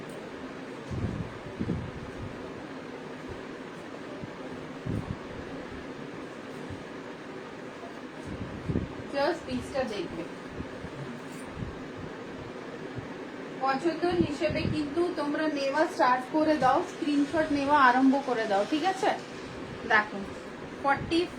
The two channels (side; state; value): both; identical; correlation 1.00